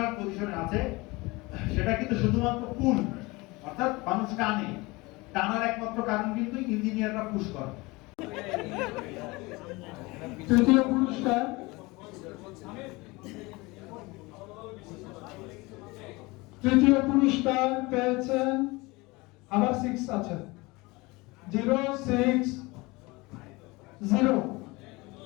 পজিশনে আছে, সেটা কিন্তু শুধুমাত্র পুল, অর্থাৎ মানুষ টানার একমাত্র কারণ কিন্তু ইঞ্জিনিয়াররা পুশ করে। তৃতীয় পুরস্কার পেয়েছেন, আবার 6 আছে, 060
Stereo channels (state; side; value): quieter; right; 23.5 dB